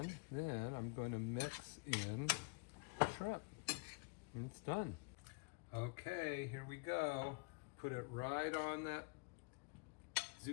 then I'm going to mix in the shrimp. And it's done. Okay, here we go. Put it right on that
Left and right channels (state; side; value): quieter; right; 31.7 dB